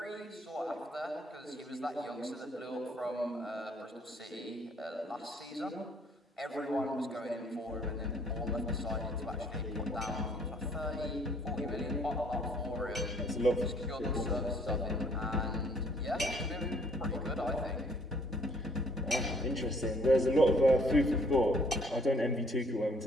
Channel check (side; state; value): both; normal; correlation 0.61